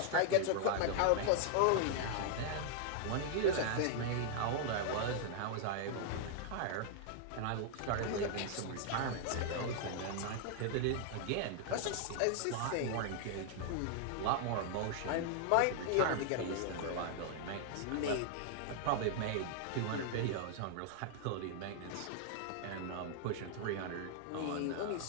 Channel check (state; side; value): different; both; correlation 0.00